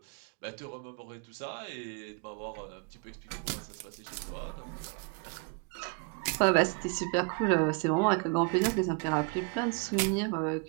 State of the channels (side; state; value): left; quieter; 34.4 dB